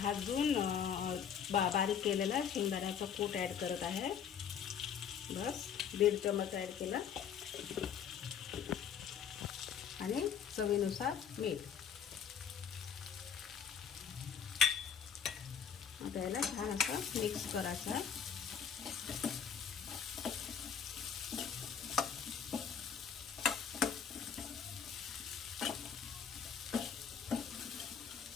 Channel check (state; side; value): quieter; right; 7.7 dB